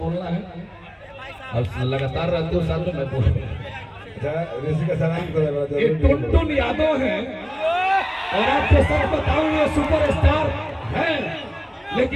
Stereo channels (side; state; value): both; identical; correlation 1.00